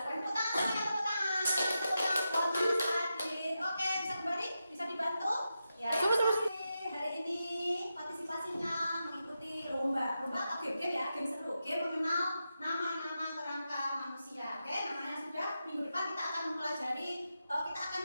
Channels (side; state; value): both; inverted; correlation -0.88